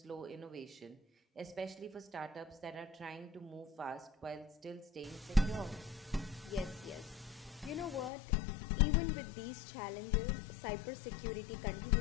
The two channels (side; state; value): right; drops out; at 8.1 s